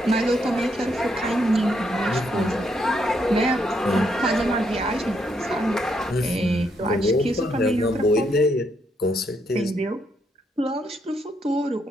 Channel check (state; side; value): normal; both; correlation 0.76